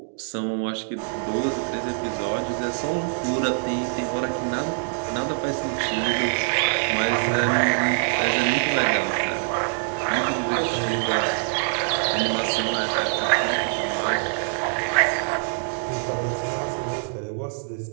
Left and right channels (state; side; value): silent; left; digital silence